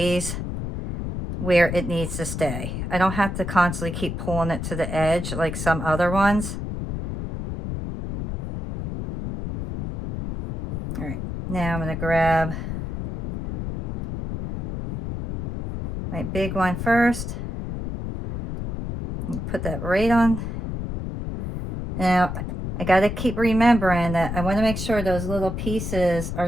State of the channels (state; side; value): noise; left; rumble, 5 dB below the sound